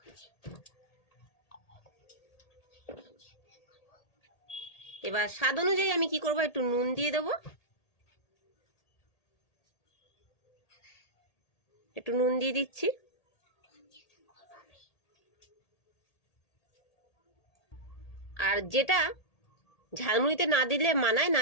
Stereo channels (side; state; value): right; late; 1.8 ms